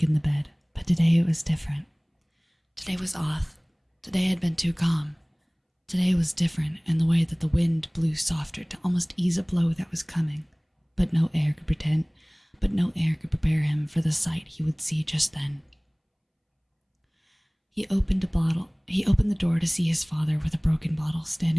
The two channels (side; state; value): both; identical; correlation 1.00